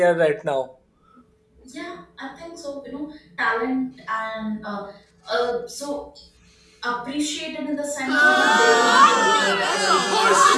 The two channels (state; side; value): identical; both; correlation 1.00